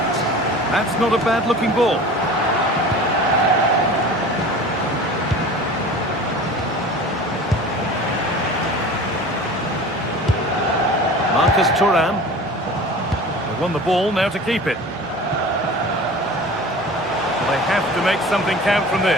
That's not a bad-looking ball. Marcus Thuram. They won the ball, now to keep it. They have to make something count from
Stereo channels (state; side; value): normal; both; correlation 0.39